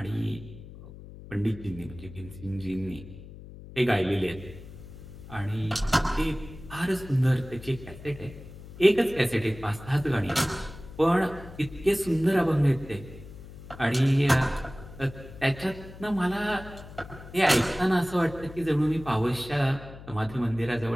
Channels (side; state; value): left; noise; hum, 16 dB below the sound